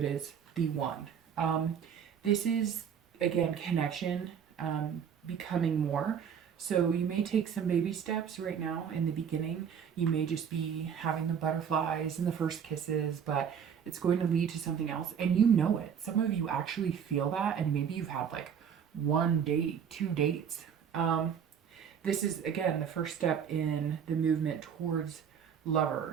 is the one. This is, again, connection, becoming more. So you may take some baby steps right now in the beginning. You may just be having the butterflies and the first kisses, but it's going to lead to something else. And you know it. Some of you actually feel that, and maybe you've had like one date, 2 dates. This is, again, the first step in the movement towards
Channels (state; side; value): quieter; left; 7.8 dB